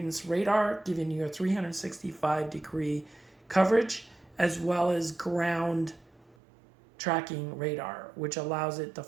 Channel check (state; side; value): drops out; left; at 6.4 s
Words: radar, giving you a 365-degree coverage, as well as ground tracking radar, which allows it to